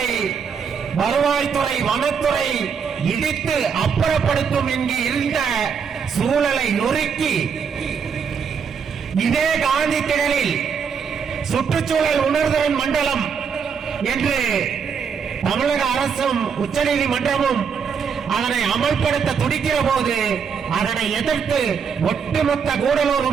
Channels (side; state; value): left; quieter; 6.5 dB